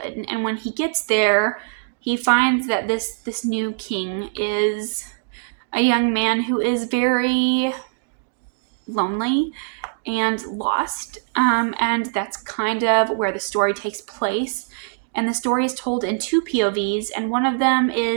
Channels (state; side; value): silent; left; digital silence